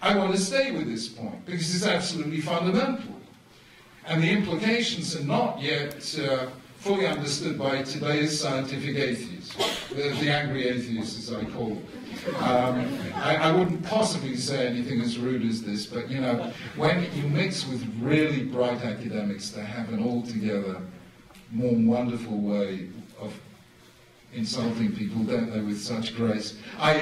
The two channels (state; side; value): identical; both; correlation 1.00